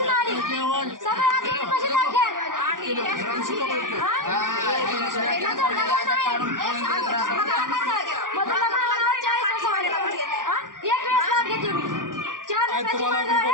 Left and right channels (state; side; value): late; left; 0.89 ms